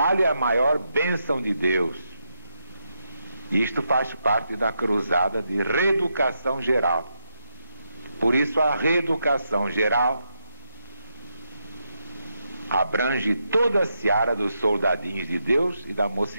é a maior bênção de Deus. Isto faz parte da cruzada de reeducação geral. Por isso a reeducação geral abrange toda a seara dos soldadinhos de Deus e da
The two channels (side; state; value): both; inverted; correlation -0.83